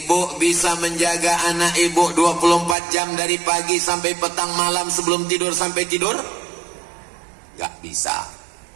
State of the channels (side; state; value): left; drops out; at 2.8 s